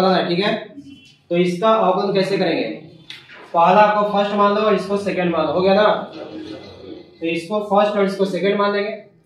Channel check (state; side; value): identical; both; correlation 1.00